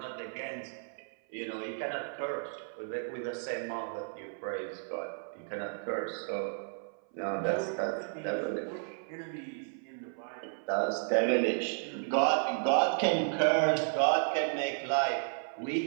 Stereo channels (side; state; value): left; silent; 55 dB below the other